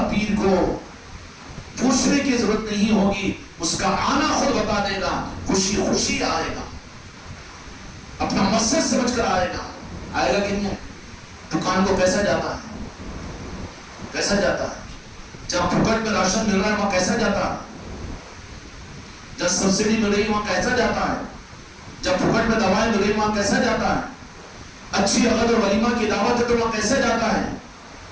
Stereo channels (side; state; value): both; identical; correlation 1.00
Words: پیر کو پوچھنے کی ضرورت نہیں ہوگی، اس کا آنا خود بتا دے گا، خوشی خوشی آئے گا، اپنا مقصد سمجھ کر آئے گا۔ آئے گا کہ نہیں؟ دکان کو کیسا جاتا ہے؟ کیسا جاتا ہے؟ جب پھوکٹ میں راشن مل رہا ہے وہاں کیسا جاتا ہے؟ جب سبسڈی مل رہی ہے وہاں کیسا جاتا ہے؟ جب پھوکٹ میں دوائیں مل رہی وہاں کیسا جاتا ہے؟ اچھی عقد اور ولیمہ کی دعوت ہے تو وہاں کیسا جاتا ہے؟